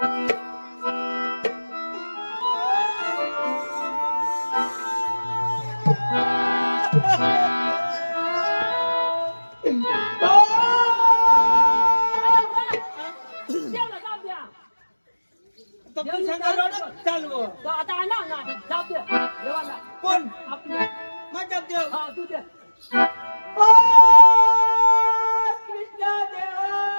देवला जाऊ द्या चालू तो आता आणा ना जाऊ द्या देवाला कोण आपले माझा देव हा तू दे ओ कृष्ण देवा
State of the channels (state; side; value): inverted; both; correlation -1.00